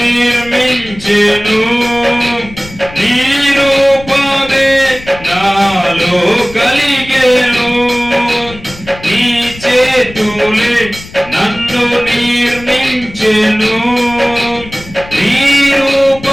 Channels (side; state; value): left; noise; rumble, 17 dB below the sound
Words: నీ రూపమే నాలో కలిగెను నీ చేతులే నన్ను నిర్మించెను నీ